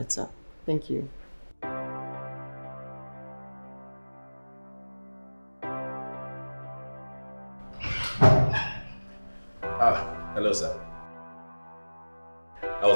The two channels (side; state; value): both; inverted; correlation -1.00